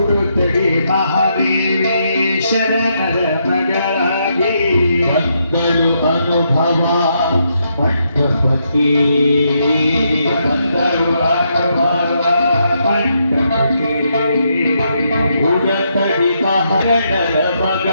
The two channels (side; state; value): both; inverted; correlation -0.78